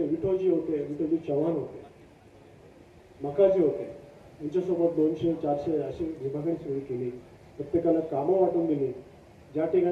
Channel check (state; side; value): identical; both; correlation 1.00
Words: होते, विठोजी चव्हाण होते, मकाजी होते, यांच्यासोबत 200-400 अशी विभागणी सुरू केली. प्रत्येकाला कामं वाटून दिली. ज्या